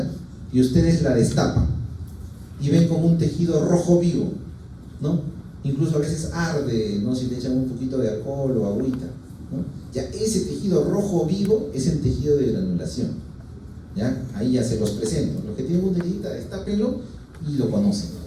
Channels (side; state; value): both; identical; correlation 1.00